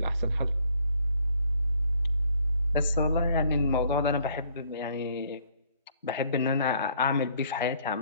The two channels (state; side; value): inverted; both; correlation -0.63